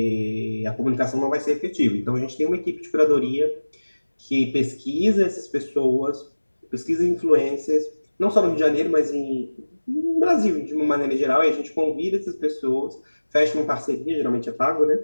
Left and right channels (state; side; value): inverted; both; correlation -1.00